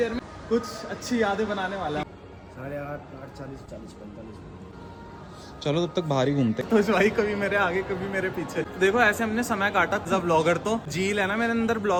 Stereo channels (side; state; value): both; identical; correlation 1.00